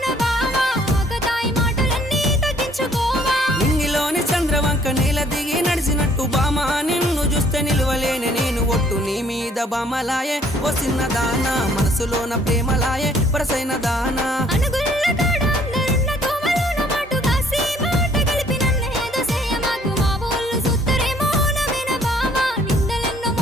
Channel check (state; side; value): normal; both; correlation 0.61